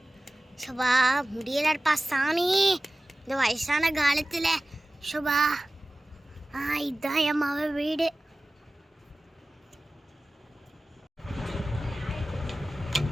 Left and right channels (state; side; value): normal; both; correlation 0.97